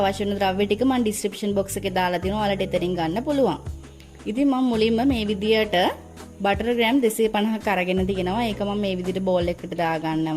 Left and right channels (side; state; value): both; identical; correlation 1.00